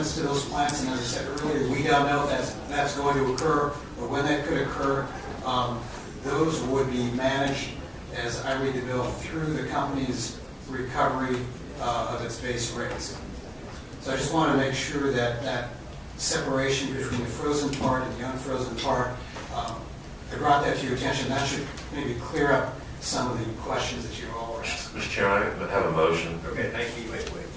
to those plants, and as I said earlier, we don't know if that's going to occur or when that could occur. Those would be managed, as I read the bill, through the company's recovery of its base rates. So I just want to make sure that that separation between the frozen part and the unfrozen part, I brought that to your attention. That should maybe clear up some of the questions that you all were asking. Mr. Chairman, I have a motion. Okay, thank you. Wait.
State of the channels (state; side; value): identical; both; correlation 1.00